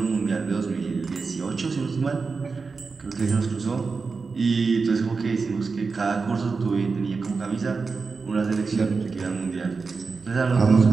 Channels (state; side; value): quieter; left; 4.6 dB